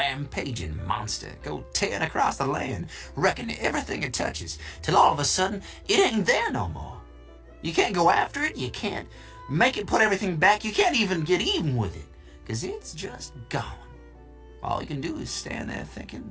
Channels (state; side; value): identical; both; correlation 1.00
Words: monster go tearing across the land, wrecking everything it touches, till all of a sudden, it ain't there no more. You can't go after it, you can't make it put everything back, you can't even get even with it, 'cause it's just gone. All you can do is stand there